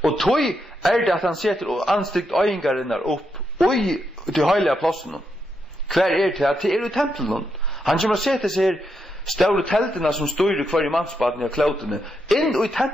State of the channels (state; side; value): normal; both; correlation 0.82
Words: Og tog er det at han setter anstikt øyngarinnar opp i de heilige plassen. Hver er det at det er i tempelen. Han kommer å sette seg store teltene som styrer hver i mannsbaden i klautene inn i